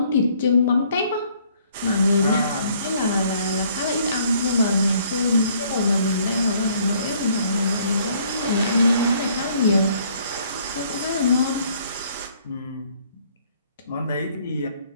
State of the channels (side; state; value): both; inverted; correlation -0.62